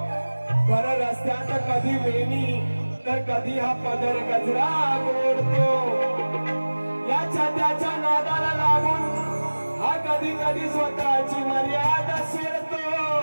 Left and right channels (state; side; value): inverted; both; correlation -1.00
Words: भर रस्त्यात कधी वेणी तर कधी हा पदर गजरा गोडतो. याच्या त्याच्या नादाला लागून हा कधी कधी स्वतःची मर्यादा सोडतो.